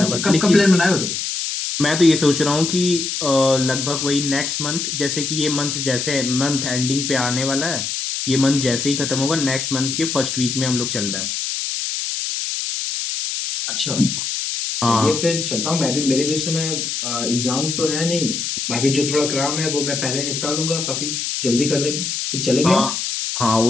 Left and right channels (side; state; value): left; noise; hiss, 3 dB below the sound